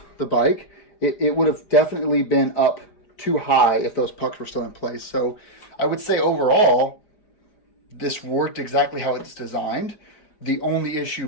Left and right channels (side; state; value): right; late; 4.9 ms